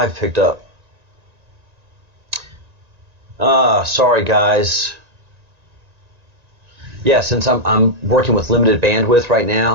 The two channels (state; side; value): late; left; 1.9 ms